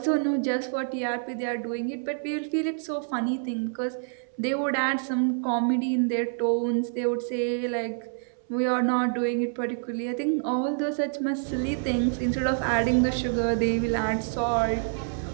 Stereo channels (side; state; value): left; silent; 60 dB below the other